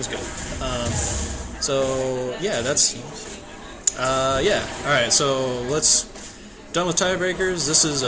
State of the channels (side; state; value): both; identical; correlation 1.00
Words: good. So yeah, that's. Yeah, alright, so done with tiebreakers. This is